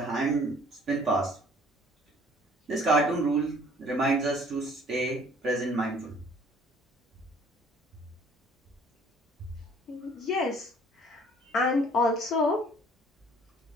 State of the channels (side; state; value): both; normal; correlation 0.55